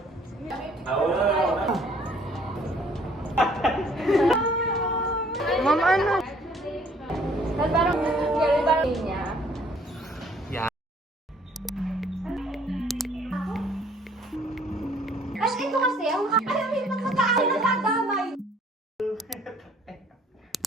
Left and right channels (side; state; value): both; normal; correlation 0.59